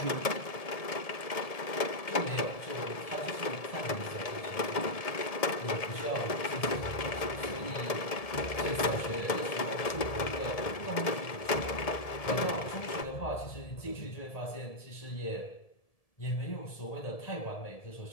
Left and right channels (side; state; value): right; late; 1.7 ms